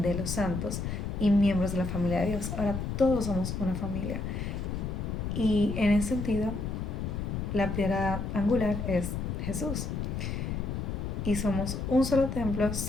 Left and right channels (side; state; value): left; noise; rumble, 3 dB below the sound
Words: los santos y miembros de la familia de Dios. Ahora todos somos una familia. Y en ese sentido, la piedra angular es Jesús. Y somos un solo templo